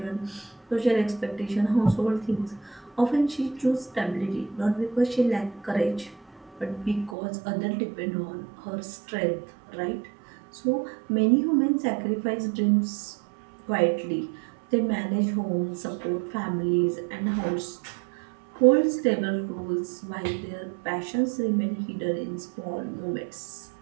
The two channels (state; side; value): drops out; left; at 7.2 s